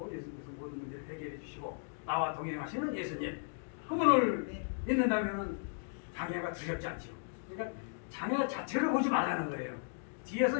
예수님께서 모든 문제를 해결해 주시고 나와 동행하시는 예수님 그분을 믿는다면은 장애가 두렵지 않죠. 그러니까 장애 자체를 보지 말라는 거예요.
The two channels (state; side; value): silent; right; digital silence